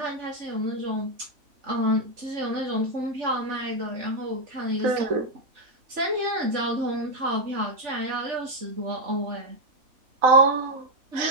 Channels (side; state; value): left; late; 3.4 ms